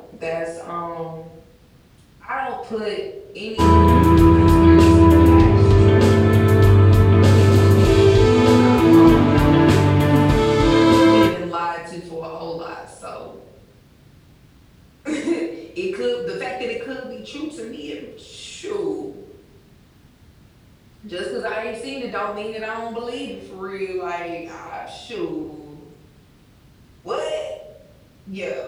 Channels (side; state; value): both; identical; correlation 1.00